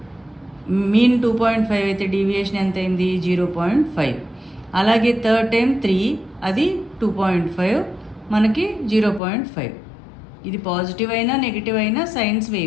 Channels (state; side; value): drops out; right; at 9.2 s